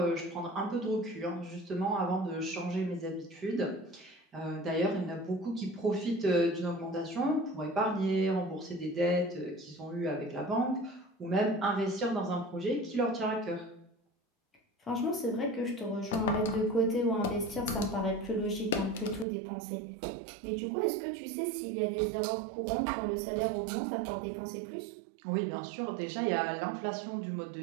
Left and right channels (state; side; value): drops out; left; at 19.2 s